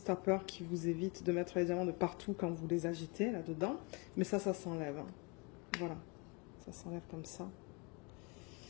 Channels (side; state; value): right; quieter; 30.8 dB